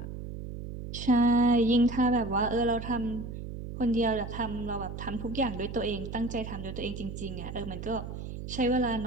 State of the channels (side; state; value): right; noise; hum, 8 dB below the sound